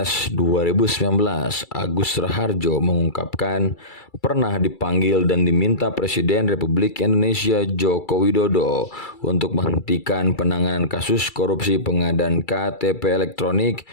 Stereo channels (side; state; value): right; late; 2.3 ms